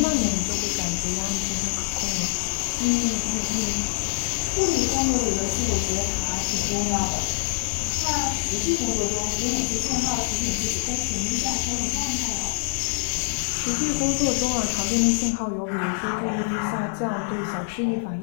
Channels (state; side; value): silent; right; 62 dB below the other